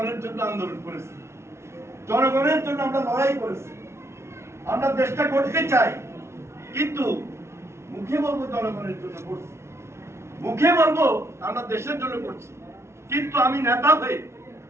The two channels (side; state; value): left; late; 0.13 ms